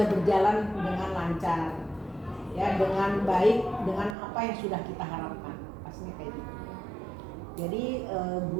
berjalan dengan lancar, ya, dengan baik, dengan apa yang sudah kita harapkan, pastinya kayak gitu. Jadi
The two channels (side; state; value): left; drops out; at 4.2 s